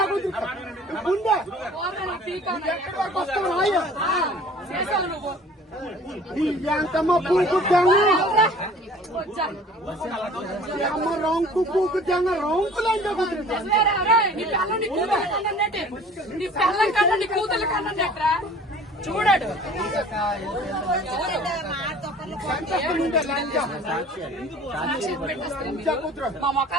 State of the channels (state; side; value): normal; both; correlation 0.48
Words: కుట్ర గుండె ఎక్కడి వరకు వస్తావు రాయ చేసావు నువ్వు ఎంతమ్మ పూకు తెంగ అమ్మ రొంకు పూకు తెంగ రొంకు లంచ కుట్ర నీ పిల్లం కన్నా నీ కూతురు కన్నా చూడాడు లంచ మా